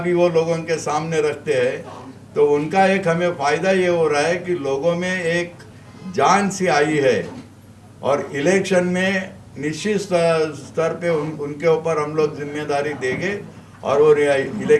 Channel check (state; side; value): identical; both; correlation 1.00